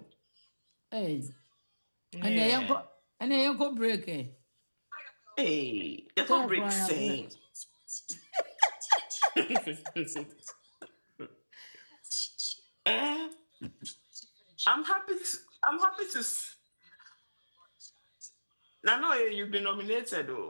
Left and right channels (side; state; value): both; inverted; correlation -1.00